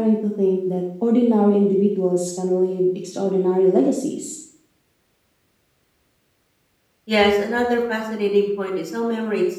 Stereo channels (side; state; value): both; identical; correlation 1.00